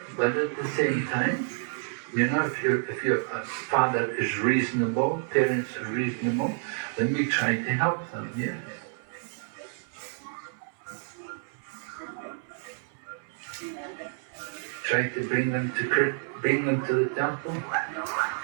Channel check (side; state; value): left; silent; 59 dB below the other